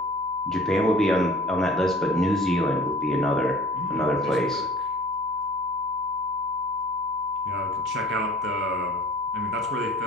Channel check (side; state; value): right; noise; hum, 25 dB below the sound